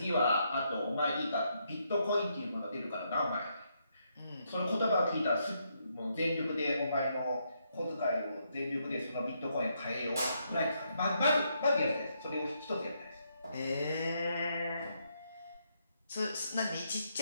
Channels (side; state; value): both; inverted; correlation -0.77